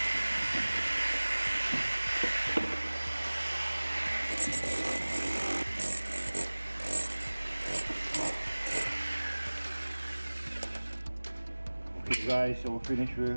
guys, so we're finished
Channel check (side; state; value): both; inverted; correlation -1.00